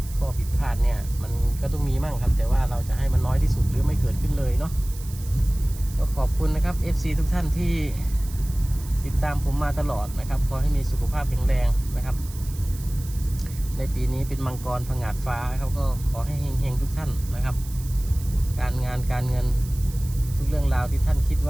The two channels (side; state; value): right; noise; hiss, 17 dB below the sound